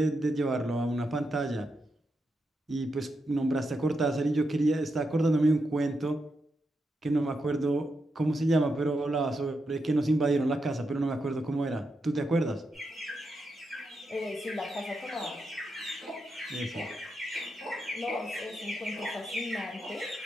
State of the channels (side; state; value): both; normal; correlation 0.85